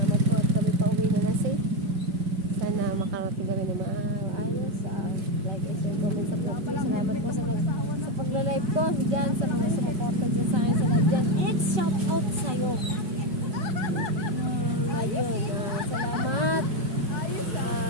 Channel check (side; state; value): left; late; 5.1 ms